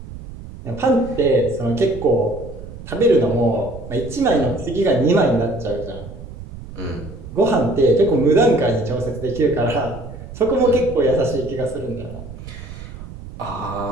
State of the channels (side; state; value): right; noise; rumble, 13 dB below the sound